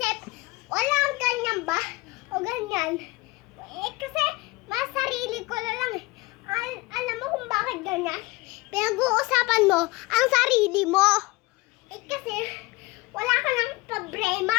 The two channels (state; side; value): quieter; right; 22.9 dB